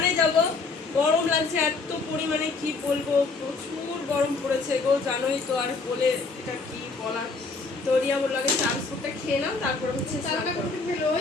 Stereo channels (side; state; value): right; quieter; 4.1 dB